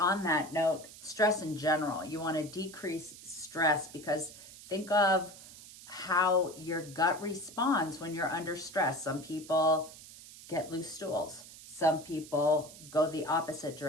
that note, stress in general. You want to decrease stress, because think of how your gut responds when you're under stress. Some people get loose stools. Some people go the opposite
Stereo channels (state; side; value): noise; right; hiss, 17 dB below the sound